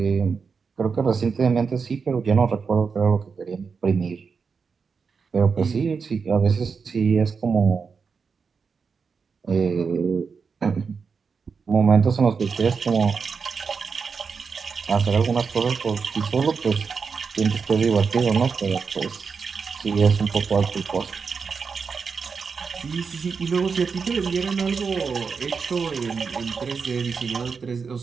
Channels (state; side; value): quieter; left; 5.4 dB